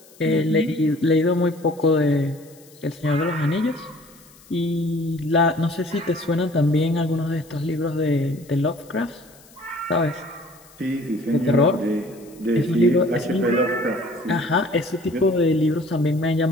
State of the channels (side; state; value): left; noise; hiss, 26 dB below the sound